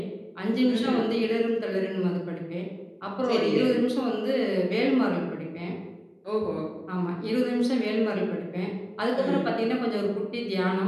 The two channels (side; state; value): both; identical; correlation 1.00